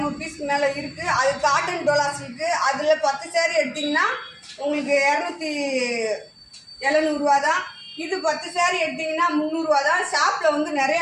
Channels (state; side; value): identical; both; correlation 1.00